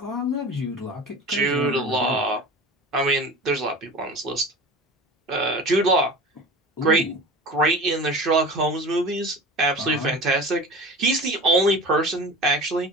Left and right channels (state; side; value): normal; both; correlation 0.36